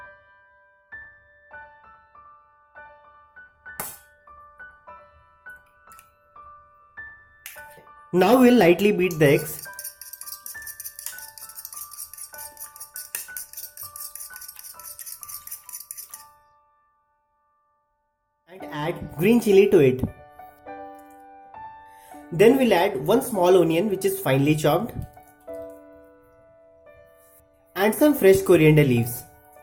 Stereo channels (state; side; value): identical; both; correlation 1.00